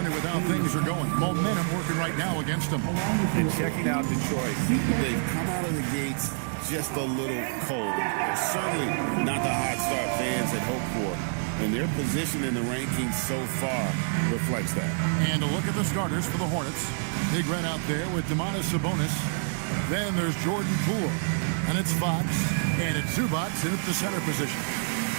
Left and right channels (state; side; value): silent; left; digital silence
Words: with how things are going. Momentum working right now against them. And checking out Detroit, they've come out of the gates just a little cold. Certainly not the hot start fans had hoped for. And their position in the rankings so far reflects that. And a look at the starters for the Hornets. Big Red out there with Sabonis. Then there's Jordan Poole. And it's Fox. And it's Zubac in at the center position.